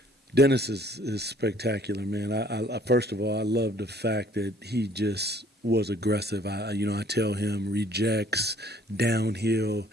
Dennis is spectacular, man. I first of all, I love the fact that he just was aggressive. I tell him rejects, downhill.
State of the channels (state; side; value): normal; both; correlation 0.58